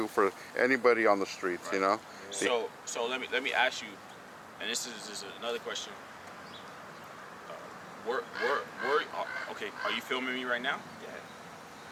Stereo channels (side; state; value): both; identical; correlation 1.00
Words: for anybody on the streets, you know. So let me ask you, and this is another question. Okay, are you filming me right now?